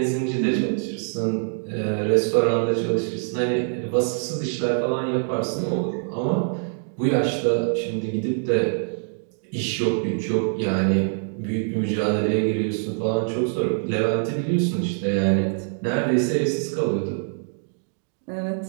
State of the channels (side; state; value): left; silent; 62 dB below the other